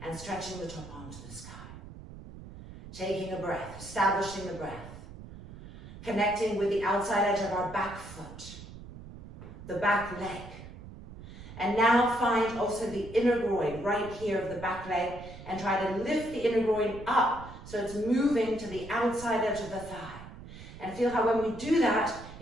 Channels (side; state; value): right; noise; rumble, 15 dB below the sound